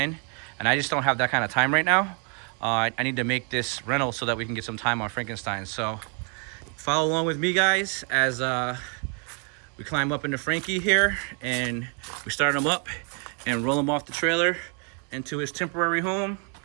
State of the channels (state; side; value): quieter; left; 36.7 dB